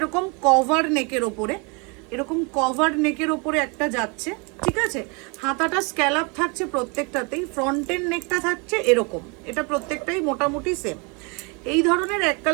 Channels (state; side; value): quieter; left; 31.7 dB